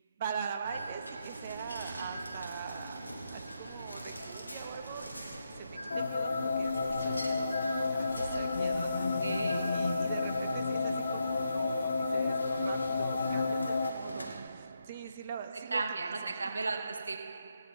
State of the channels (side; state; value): both; inverted; correlation -0.83